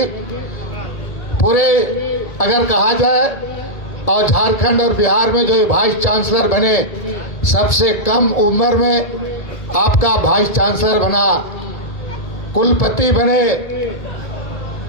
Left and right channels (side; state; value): right; late; 1.7 ms